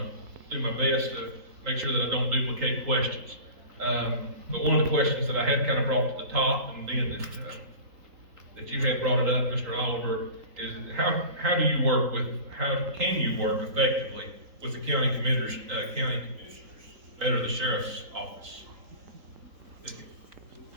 do my best to make sure that I don't duplicate questions. But one of the questions that I had kind of brought to the top, and then that you had brought it up, Mr. Oliver, is how can you work effectively with the county commissioners, better the sheriff's office?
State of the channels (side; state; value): left; late; 3.8 ms